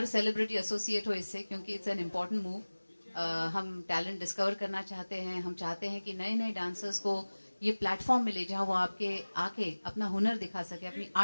सेलिब्रिटी एसोसिएट हो इससे, क्योंकि इट्स एन इम्पोर्टेंट मूव. हम टैलेंट डिस्कवर करना चाहते हैं, हम चाहते हैं कि नए डांसर्स को ये प्लेटफॉर्म मिले जहां वो आके अपना हुनर दिखा सके, अपनी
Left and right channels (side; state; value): both; inverted; correlation -1.00